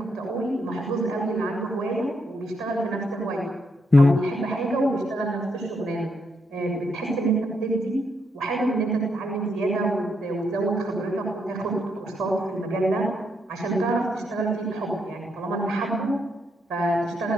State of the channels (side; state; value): both; normal; correlation 0.78